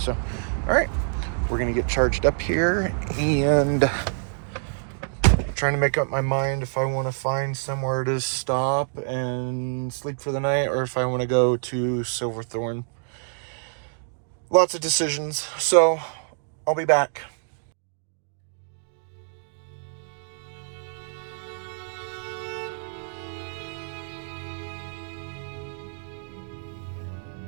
all right, we're gonna get charged up here and trying to make up my mind if I want to find somewhere to stop and sleep for the night or if I want to go to Silverthorne. Lots of decisions, so I'll be back.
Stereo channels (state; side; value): silent; left; digital silence